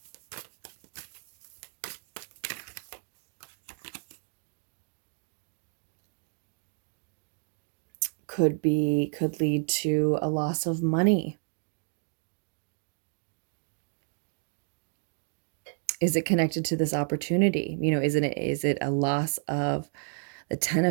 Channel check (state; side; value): silent; left; digital silence